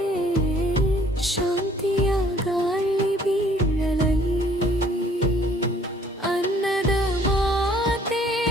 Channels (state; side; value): normal; both; correlation 0.58